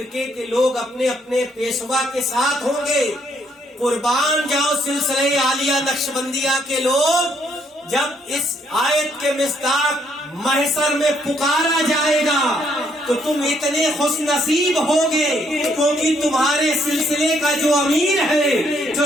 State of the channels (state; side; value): normal; both; correlation 0.71